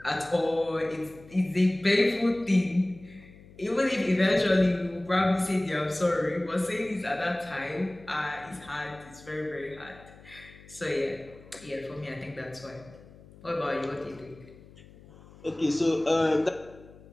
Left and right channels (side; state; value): left; noise; hum, 22 dB below the sound